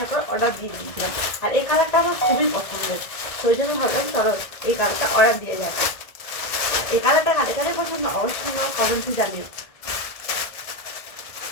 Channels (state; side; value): late; right; 1.7 ms